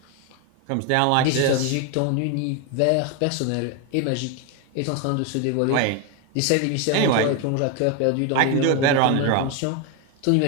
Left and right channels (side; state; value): both; different; correlation 0.01